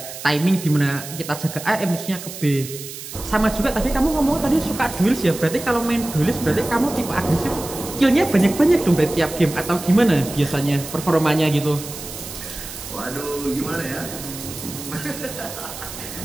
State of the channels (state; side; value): noise; right; hiss, 11 dB below the sound